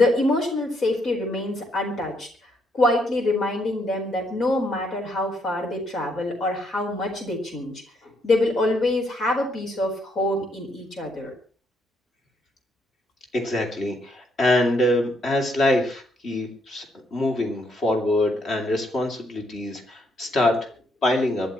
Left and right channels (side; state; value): both; normal; correlation 0.73